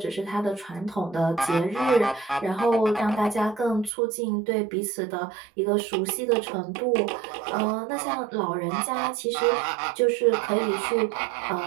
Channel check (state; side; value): drops out; left; at 3.9 s